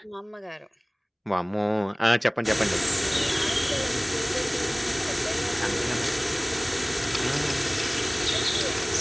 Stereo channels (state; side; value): identical; both; correlation 1.00